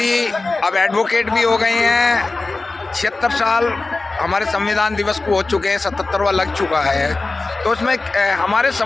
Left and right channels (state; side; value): quieter; right; 3.4 dB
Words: अब एडवोकेट भी हो गए हैं। 76 साल हमारे संविधान दिवस को हो चुके हैं, 77वां लग चुका है। तो उसमें हमारे